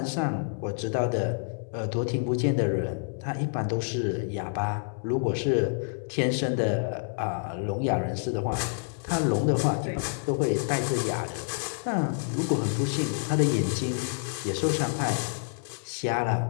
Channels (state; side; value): silent; right; 59 dB below the other